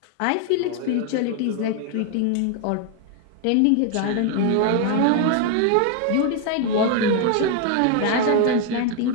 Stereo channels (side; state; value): both; different; correlation 0.01